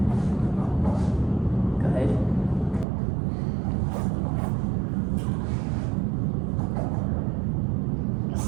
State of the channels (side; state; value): left; drops out; at 2.9 s